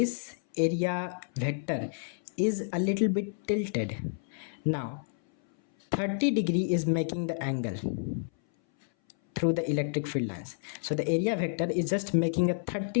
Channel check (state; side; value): silent; right; 58 dB below the other